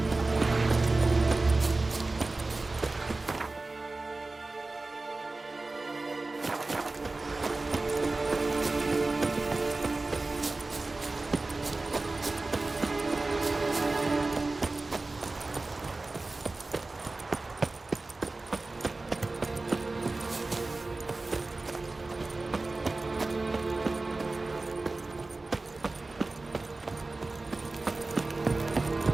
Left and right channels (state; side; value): quieter; left; 3.3 dB